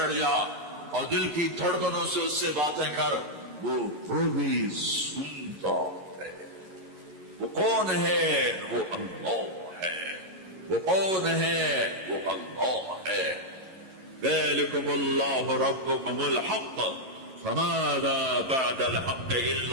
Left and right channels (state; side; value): late; left; 11 ms